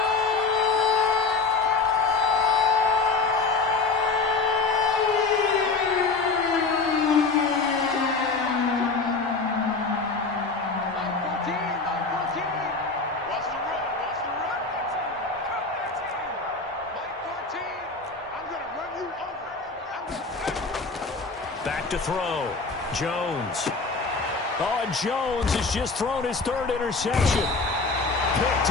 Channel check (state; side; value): quieter; right; 4.1 dB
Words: Back to throw. Jones. Oh, and Jones has just thrown his 3rd interception.